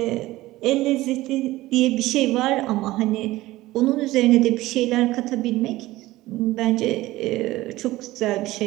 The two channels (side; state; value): left; quieter; 17.6 dB